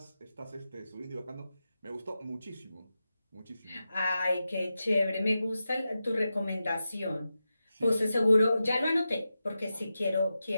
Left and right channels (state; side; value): inverted; both; correlation -0.91